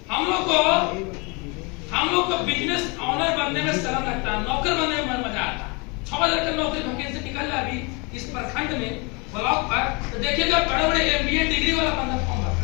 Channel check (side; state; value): right; quieter; 30.1 dB